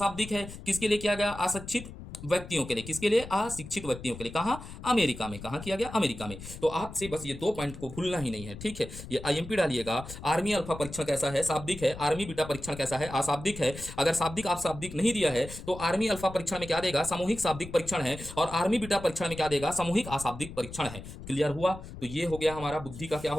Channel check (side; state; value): left; noise; rumble, 13 dB below the sound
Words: है। किसके लिए किया गया, अशिक्षित व्यक्तियों के लिए। किसके लिए, अशिक्षित व्यक्तियों के लिए। कहा, अमेरिका में। कहा किया गया, अमेरिका में। तो आपसे बस ये दो पॉइंट को भूलना ही नहीं है, ठीक है। ये आईएमपी डालिएगा, आर्मी अल्फा परीक्षण कैसा है, शाब्दिक है। आर्मी बीटा परीक्षण कैसा है, अशाब्दिक है। अगर शाब्दिक आप शाब्दिक नहीं दिया है तो आर्मी अल्फा परीक्षण में क्या देगा, सामूहिक शाब्दिक परीक्षण है। और आर्मी बीटा परीक्षण में क्या देगा, सामूहिक अशाब्दिक परीक्षण है। क्लियर हुआ। तो ये हो गया हमारा बुद्धि का क्या